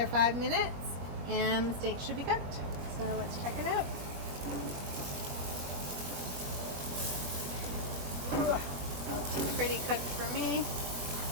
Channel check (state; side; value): late; left; 21 ms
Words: 5 minutes, and the steak should be cooked. So let's check it out. Pretty cooked for me.